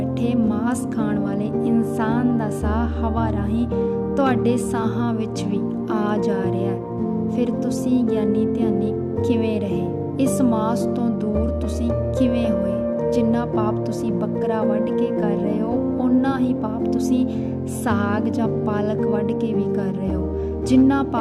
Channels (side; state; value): both; identical; correlation 1.00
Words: ਮਾਸ ਖਾਣ ਵਾਲੇ ਇਨਸਾਨ ਦਾ ਸਾਹ ਹਵਾ ਰਾਹੀਂ ਤੁਹਾਡੇ ਸਾਹਾਂ ਵਿੱਚ ਵੀ ਆ ਜਾ ਰਿਹਾ। ਫਿਰ ਤੁਸੀਂ ਗਿਆਨੀ ਧਿਆਨੀ ਕਿਵੇਂ ਰਹੇ? ਇਸ ਮਾਸ ਤੋਂ ਦੂਰ ਤੁਸੀਂ ਕਿਵੇਂ ਹੋਏ? ਜਿੰਨਾ ਪਾਪ ਤੁਸੀਂ ਬੱਕਰਾ ਵੱਢ ਕੇ ਕਰ ਰਹੇ ਹੋ, ਓਨਾ ਹੀ ਪਾਪ ਤੁਸੀਂ ਸਾਗ ਜਾਂ ਪਾਲਕ ਵੱਢ ਕੇ ਵੀ ਕਰ ਰਹੇ ਹੋ। ਜਿੰਨਾ